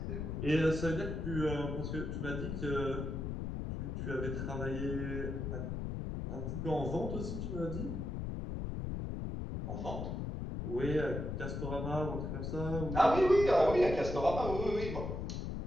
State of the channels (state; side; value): noise; left; rumble, 4 dB below the sound